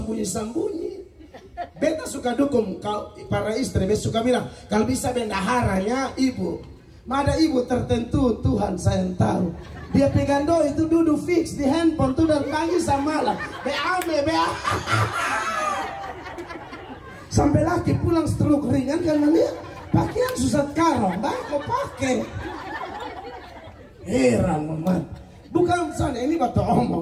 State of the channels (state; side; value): identical; both; correlation 1.00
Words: Beta suka dukung para istri, beta suka bilang kalau bisa bendaharanya ibu. Ada ibu tertentu Tuhan saya tahu. Dia pegang doi itu duduk fix di handphone tuh dan pagi sama malam. Bea. Sampai laki pulang stroke ringan karena dia pakaian susah karong, bako pakai. Heran amat. Bukan sana ini batu